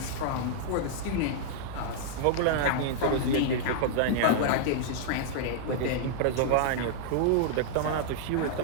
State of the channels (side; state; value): both; different; correlation -0.01